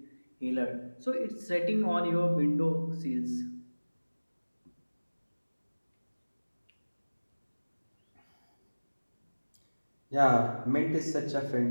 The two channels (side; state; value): both; inverted; correlation -1.00